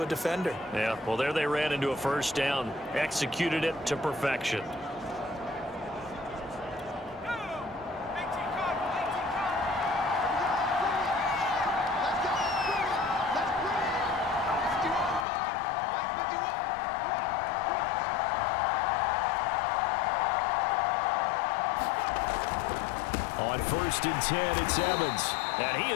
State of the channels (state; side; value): drops out; right; at 15.2 s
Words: a defender. Yeah, well, there they ran into a first down. Executed it to perfection. On 1st and 10, it's Evans. And he